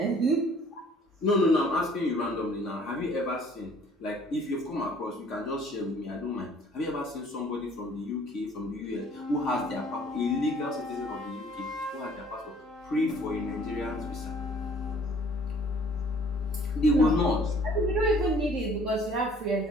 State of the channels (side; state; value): both; normal; correlation 0.56